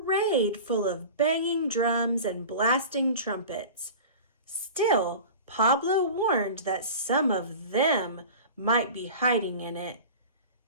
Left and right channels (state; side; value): inverted; both; correlation -0.36